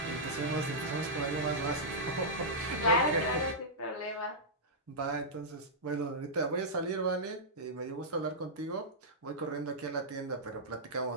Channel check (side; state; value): both; normal; correlation -0.12